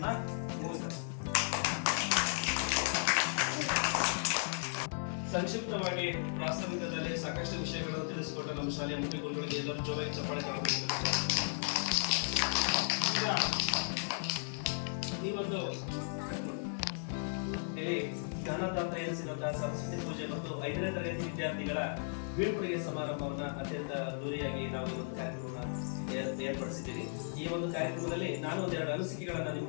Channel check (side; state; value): right; silent; 54 dB below the other